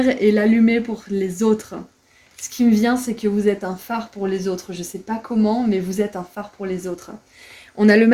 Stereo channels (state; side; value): identical; both; correlation 1.00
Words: et l'allumer pour les autres. Ce qui me vient, c'est que vous êtes un phare pour les autres. Je sais pas comment, mais vous êtes un phare pour les autres. On a le